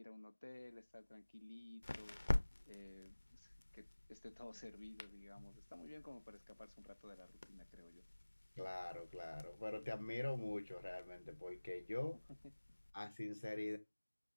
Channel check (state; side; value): inverted; both; correlation -1.00